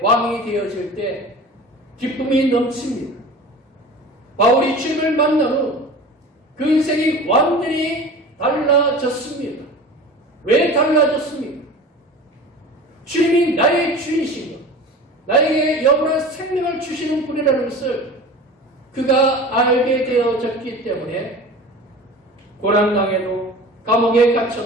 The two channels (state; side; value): normal; both; correlation 0.37